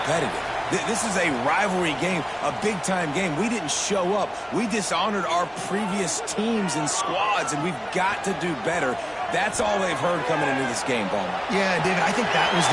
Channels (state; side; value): identical; both; correlation 1.00